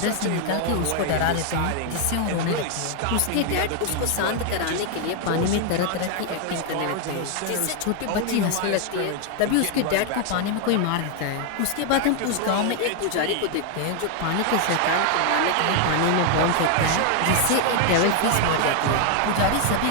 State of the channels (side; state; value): both; different; correlation 0.01